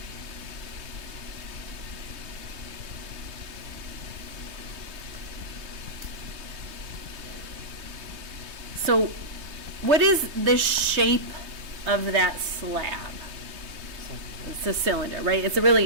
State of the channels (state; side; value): late; left; 3.2 ms